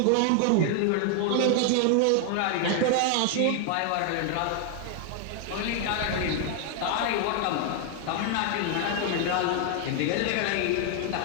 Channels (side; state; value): both; different; correlation 0.00